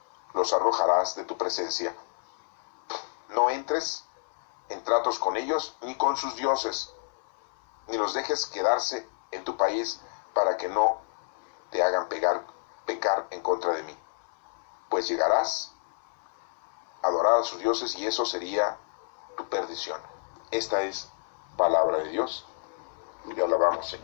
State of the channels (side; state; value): right; silent; 58 dB below the other